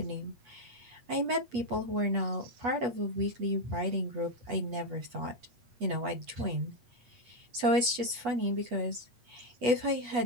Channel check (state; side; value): late; left; 8.2 ms